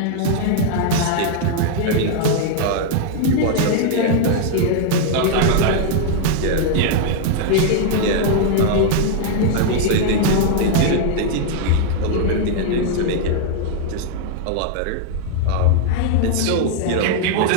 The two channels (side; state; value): both; different; correlation -0.01